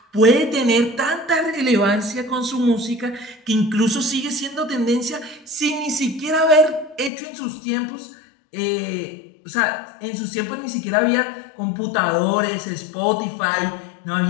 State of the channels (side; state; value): right; drops out; at 7.1 s